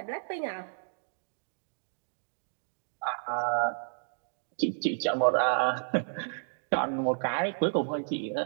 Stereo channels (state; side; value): silent; left; digital silence